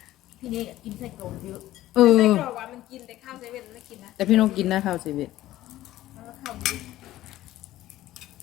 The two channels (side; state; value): right; quieter; 14.9 dB